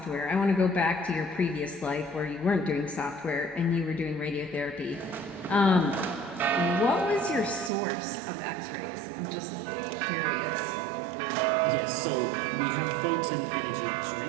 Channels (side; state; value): left; drops out; at 7.7 s